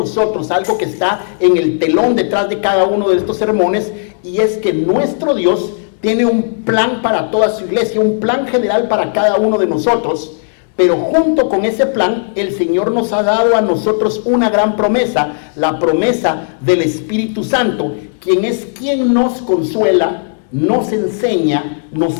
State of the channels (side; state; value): right; silent; digital silence